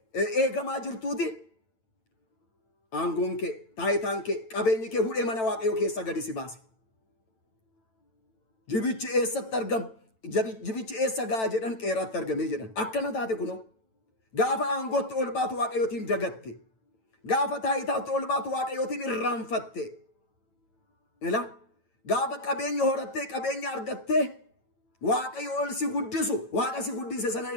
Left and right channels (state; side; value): late; right; 9.0 ms